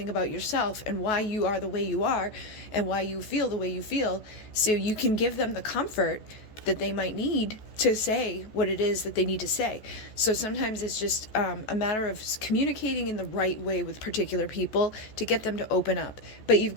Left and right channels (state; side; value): late; right; 14 ms